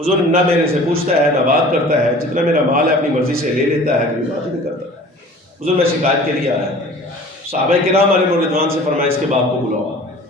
نہ میرے سے پوچھتا ہے نہ بات کرتا ہے، جتنا میرا مال ہے اپنی مرضی سے لے لیتا ہے، کوئی بات نہیں کرتا۔ حضور میں شکایت کے لیے آیا۔ صحابہ کرام علیہ رضوان سے فرمایا اس کے باپ کو بلاؤ،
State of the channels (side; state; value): both; normal; correlation 0.45